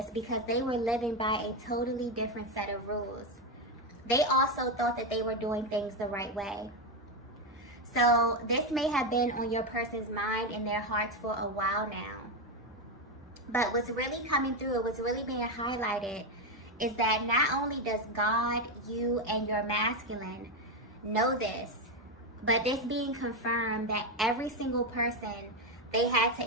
because they were living by a totally different set of rules. They also thought that they were doing things the right way. So this may have been on your person's mind and their hearts for a while now. But what's really coming through, what's really being highlighted, is that not only does God, you, and your masculine know this, but this being confirmed that every single person they had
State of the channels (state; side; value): normal; both; correlation 0.08